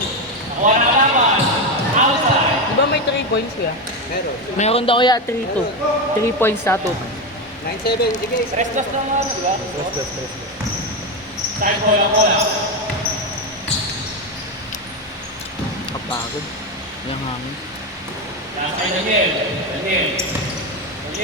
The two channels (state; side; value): normal; both; correlation 0.12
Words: Nakuha na laban. Outside. Di ba may 3 points kuya? Meron. Meron daw kaya 3-2. 3 points na to. 9-7. Sige. Restless lang nga, di ba? Side bola. Kapagod. Yung hangin. Nasa kay Daniel,